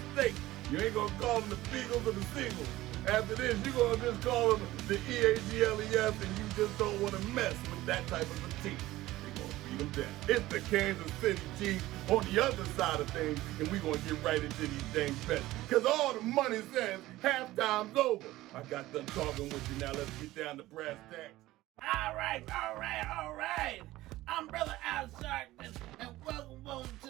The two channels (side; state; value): left; quieter; 16.8 dB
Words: You ain't gonna call them the Beagles or the Seagulls. After this, you're gonna just call them the EAGLES, and you just don't want to mess with that type of a team. Them down. It's the Kansas City Chiefs on the other side of things, and we're going to get right into these things bets. Because all the money says halftime's over. I got done talking with you. Now let's get down to brass tacks. All right. I'm Brother Al Sharkman, and welcome to